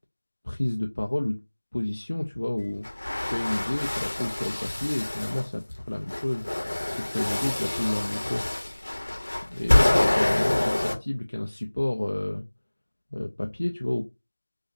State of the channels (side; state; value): both; inverted; correlation -1.00